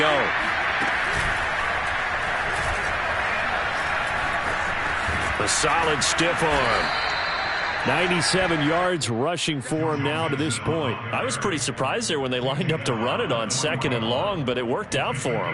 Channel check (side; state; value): both; identical; correlation 1.00